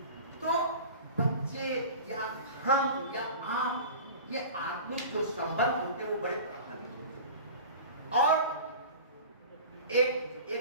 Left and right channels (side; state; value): both; inverted; correlation -0.37